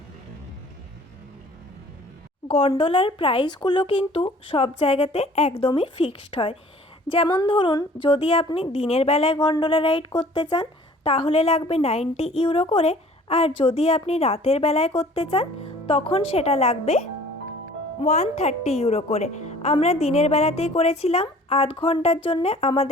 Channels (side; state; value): both; normal; correlation 0.50